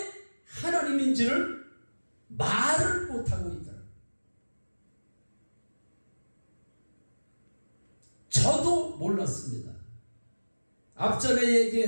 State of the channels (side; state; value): both; inverted; correlation -1.00